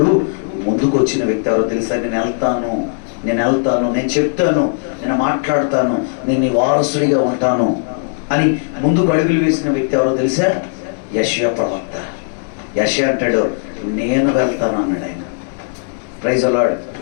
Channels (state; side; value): silent; right; digital silence